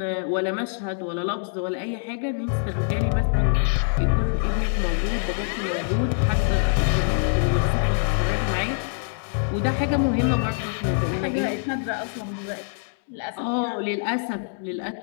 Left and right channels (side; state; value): right; silent; 62 dB below the other